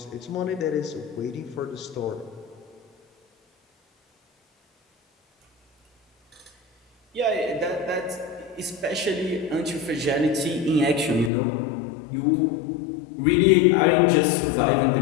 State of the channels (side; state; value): right; drops out; at 11.3 s